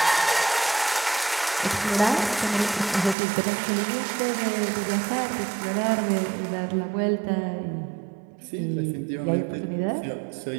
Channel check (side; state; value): left; drops out; at 3.2 s